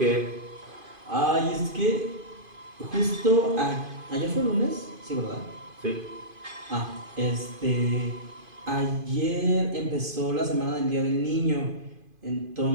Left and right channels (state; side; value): late; left; 2.5 ms